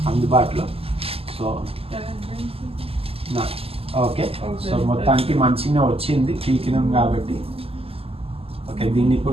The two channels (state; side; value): late; left; 0.28 ms